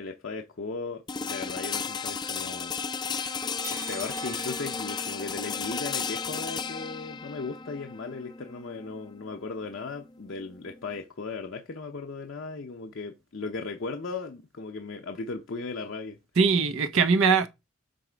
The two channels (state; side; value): normal; both; correlation 0.31